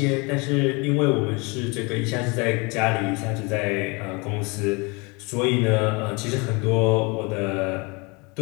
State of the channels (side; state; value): right; quieter; 28.6 dB